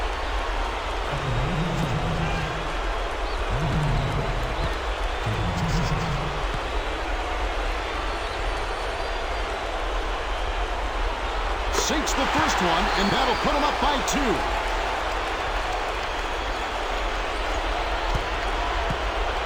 Sinks the first one, and that'll put him up by 2.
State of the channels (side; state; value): both; identical; correlation 1.00